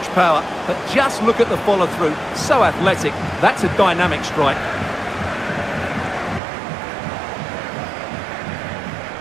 power, but just look at the follow-through. So athletic. That's a dynamic strike.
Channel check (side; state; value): left; drops out; at 6.4 s